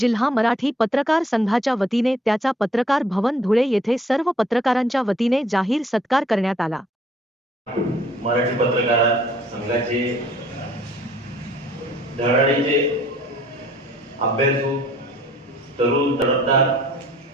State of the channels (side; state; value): both; normal; correlation 0.59